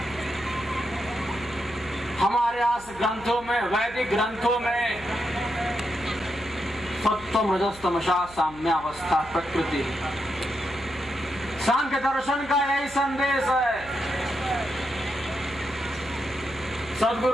हमारे आस ग्रंथों में, वैदिक ग्रंथों में सत्वम रजस तमसा साम्यावस्था प्रकृति। सांख्य दर्शन का यही संदेश है।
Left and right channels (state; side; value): noise; right; hum, 19 dB below the sound